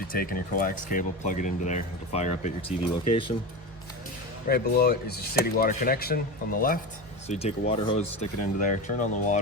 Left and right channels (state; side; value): normal; both; correlation 0.24